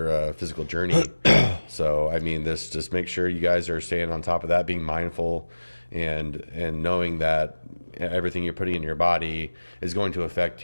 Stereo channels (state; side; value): inverted; both; correlation -1.00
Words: physical journey. So, I mean, this just make sure you guys are staying on top of that, being mindful and knowing that everything you're putting in your body is going to affect